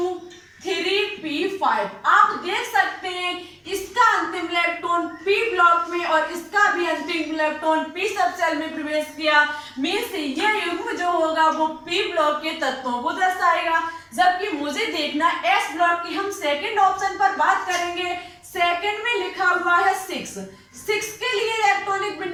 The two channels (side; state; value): both; identical; correlation 1.00